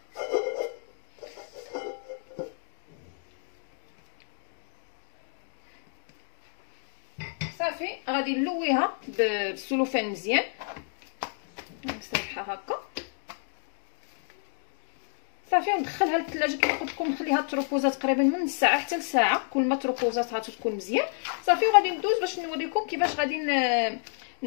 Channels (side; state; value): right; silent; digital silence